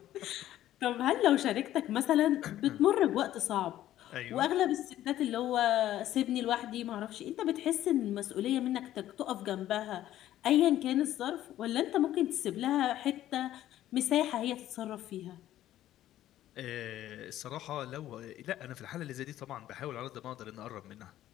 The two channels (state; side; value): quieter; right; 13.1 dB